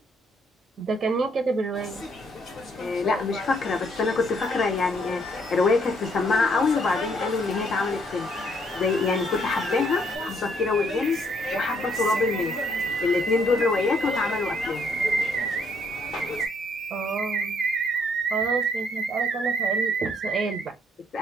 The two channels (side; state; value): both; normal; correlation 0.69